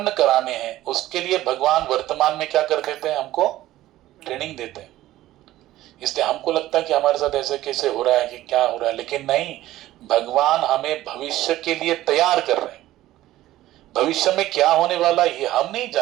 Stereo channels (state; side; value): quieter; left; 15.1 dB